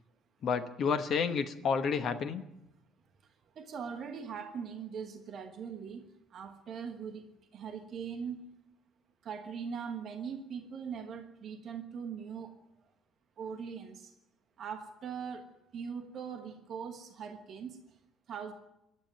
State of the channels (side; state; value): both; normal; correlation 0.61